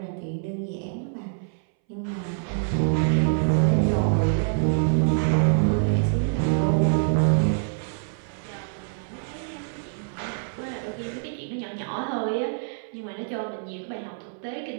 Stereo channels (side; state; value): left; silent; 61 dB below the other